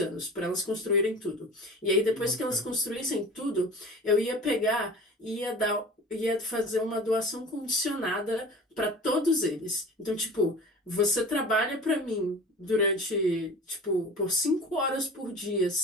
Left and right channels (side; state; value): both; normal; correlation 0.38